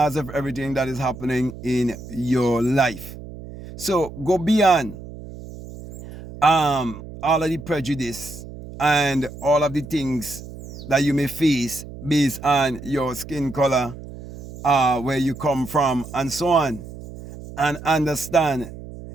of everything that is happening in your life. So go beyond all of the prejudice and all of the things that you may face based on your skin color, where you come from, and so on, and understand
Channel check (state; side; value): noise; right; hum, 13 dB below the sound